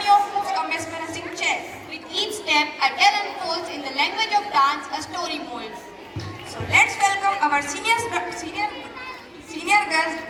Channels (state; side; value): identical; both; correlation 1.00